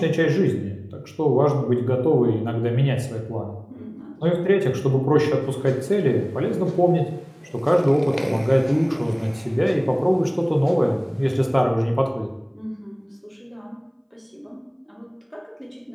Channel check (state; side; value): identical; both; correlation 1.00